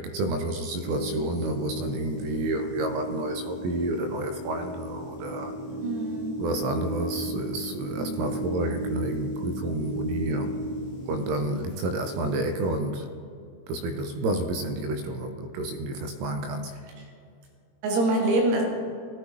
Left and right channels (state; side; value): late; left; 22 ms